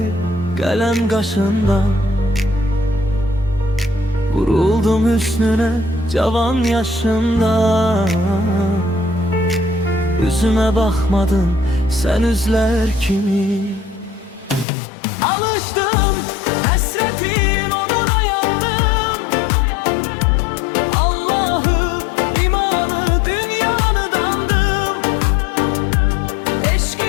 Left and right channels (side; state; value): right; drops out; at 14.7 s